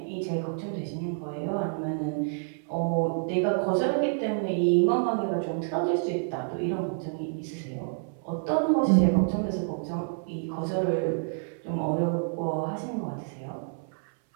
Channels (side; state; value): left; silent; 59 dB below the other